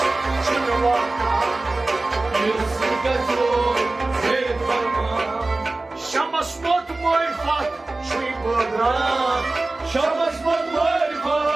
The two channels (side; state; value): left; quieter; 3.1 dB